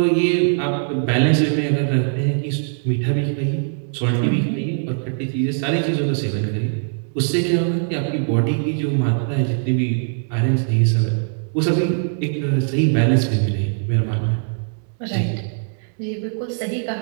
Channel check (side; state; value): left; silent; 65 dB below the other